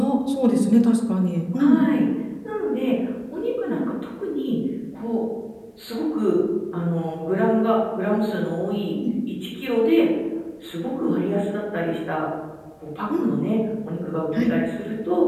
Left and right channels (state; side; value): identical; both; correlation 1.00